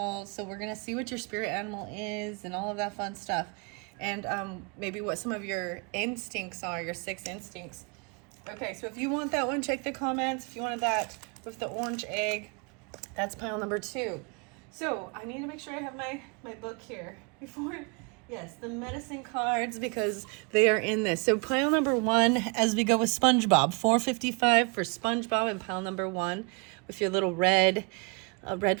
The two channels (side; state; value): left; quieter; 33.6 dB